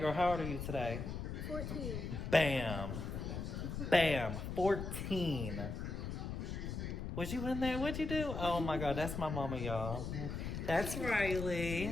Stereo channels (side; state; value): left; noise; rumble, 5 dB below the sound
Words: how old are you today? 14. Bam. Bam. 14. Was you in there? What'd you do? Oh my God, that's my mama, y'all. That's